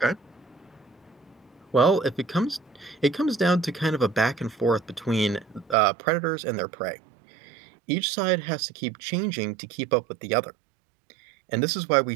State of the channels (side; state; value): left; drops out; at 5.8 s